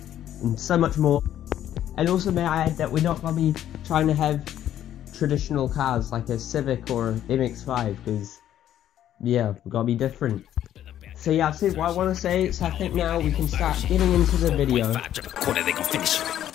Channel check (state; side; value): quieter; right; 11.3 dB